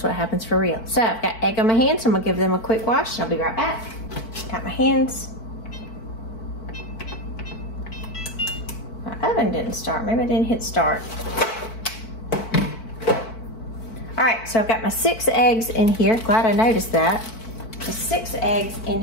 what happens for real. So I've got egg on my hands, so I'm gonna give them a quick wash. I'll be right back. Got my hands. My oven didn't start. Maybe I didn't hit start. All right, so I've got my 6 eggs in here. Glad I noticed that. The 6 eggs in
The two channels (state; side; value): late; right; 4.5 ms